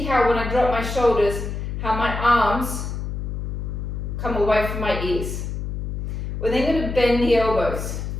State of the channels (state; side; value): noise; left; hum, 4 dB below the sound